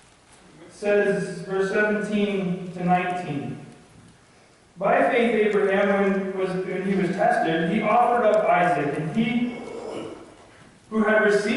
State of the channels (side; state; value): both; identical; correlation 1.00